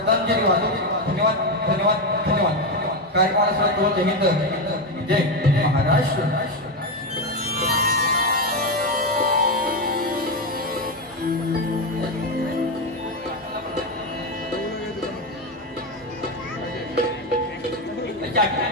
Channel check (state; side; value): normal; both; correlation 0.10